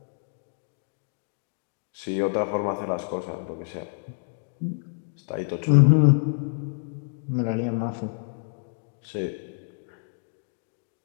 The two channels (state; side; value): silent; right; digital silence